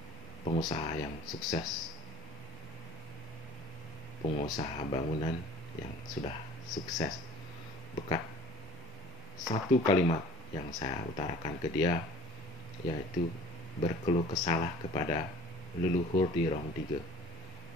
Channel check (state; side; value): normal; both; correlation 0.47